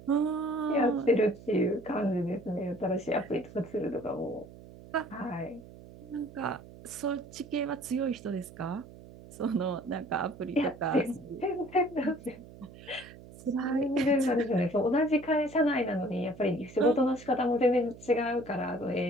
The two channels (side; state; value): right; noise; hum, 18 dB below the sound